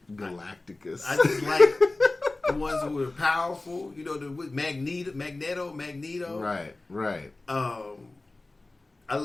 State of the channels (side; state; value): right; quieter; 3.0 dB